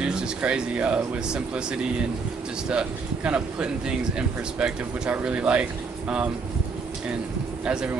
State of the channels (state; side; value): quieter; left; 4.7 dB